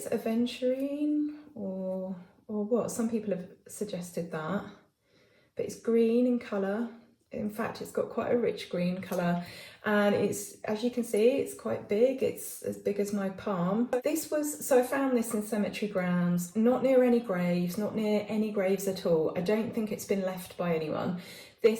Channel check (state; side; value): identical; both; correlation 1.00